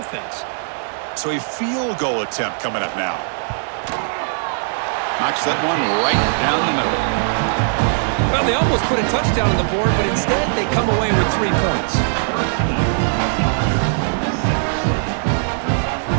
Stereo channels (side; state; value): left; silent; digital silence